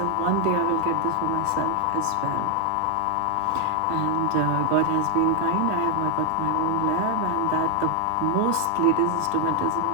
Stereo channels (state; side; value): different; both; correlation 0.00